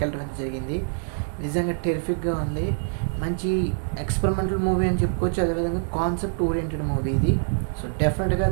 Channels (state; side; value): silent; left; digital silence